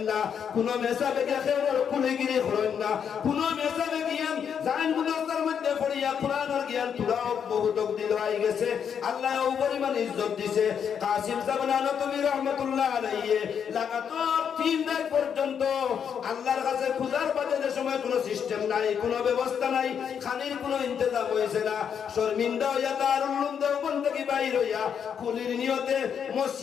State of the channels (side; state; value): right; quieter; 7.7 dB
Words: না কোন মেসাবে গিয়া খেয়র কুলিগিরি করেন না কোন মেসাবে গিয়া জান মুদাসসার মধ্যে পড়িয়া কোরআনের জ্ঞান তুলাও বহুত দিল আই গেছে আল্লাহ ও পরিমাণ ইজ্জত দিছে কাসিম সাহেব নানতবী রাহমাতুল্লাহ আলাইহি লাগাতার 3 রাত পর্যন্ত আল্লাহর কাছে খুদার বাদে যে সময় কোনো সিস্টেম নাই কোনো ব্যবস্থা নাই খানির কোনো ইন্তজাম হইছে না শর্মিন্দা হইয়া দারুল উলুম দেওবন্দ থেকে বাইর হইয়া কুলির নিয়তে